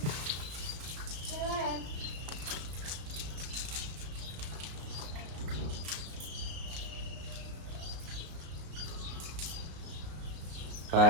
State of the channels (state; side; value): late; left; 34 ms